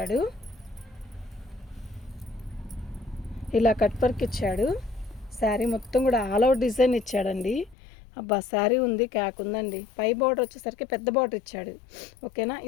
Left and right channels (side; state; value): right; drops out; at 7.8 s